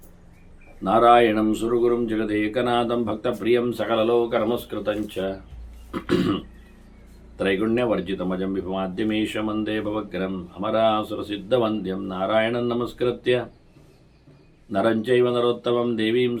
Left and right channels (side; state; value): both; identical; correlation 1.00